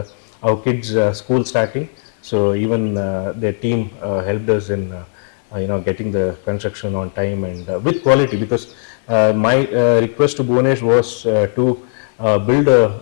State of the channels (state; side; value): silent; right; 68 dB below the other